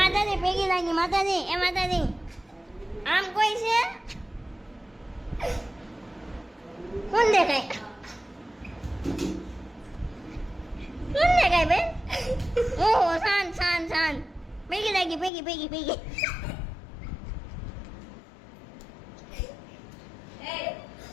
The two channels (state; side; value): drops out; right; at 15.3 s